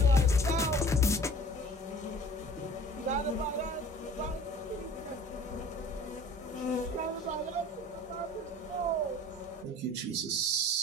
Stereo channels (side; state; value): both; normal; correlation 0.47